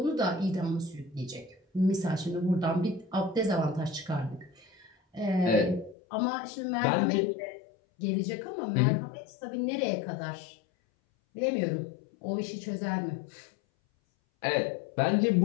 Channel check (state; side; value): drops out; right; at 6.0 s